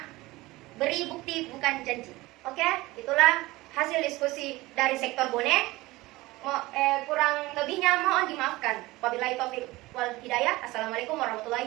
beri bukti bukan janji. Oke, itulah hasil diskusi dari sektor bonek. Kurang lebihnya mohon dimaafkan. Wabillahi taufiq wal hidayah. Assalamualaikum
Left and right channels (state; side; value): quieter; left; 19.9 dB